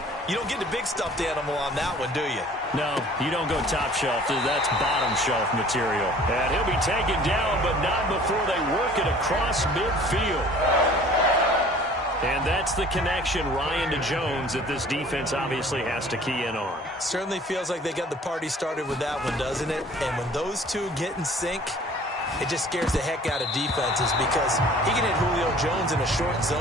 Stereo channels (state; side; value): normal; both; correlation 0.50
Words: you don't get the big stuffed animal on that one, do you? No, you don't go top shelf. That's bottom shelf material. And he'll be taken down, but not before they work it across midfield. And that's the connection, Ryan, to Jones, that this defense obviously has to key in on. Certainly feels like they got the party started with that one, doesn't it? And when those two get in sync, it just scares the heck out of defenses, because he can hit Julio Jones in a short